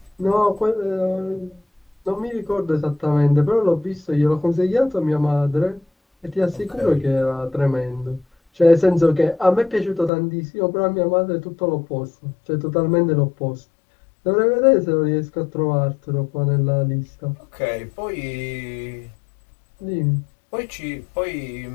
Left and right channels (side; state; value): right; drops out; at 10.1 s